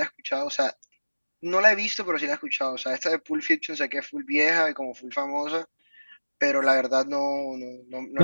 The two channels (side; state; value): both; inverted; correlation -1.00